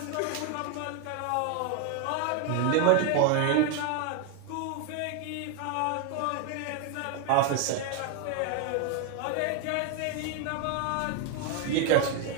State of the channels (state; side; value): different; both; correlation 0.01